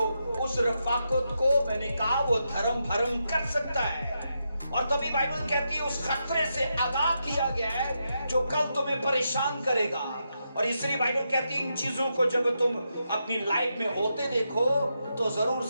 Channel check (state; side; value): inverted; both; correlation -0.84